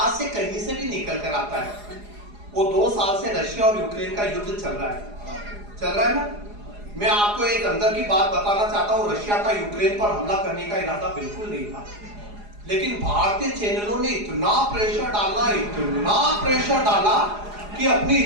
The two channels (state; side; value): late; left; 4.8 ms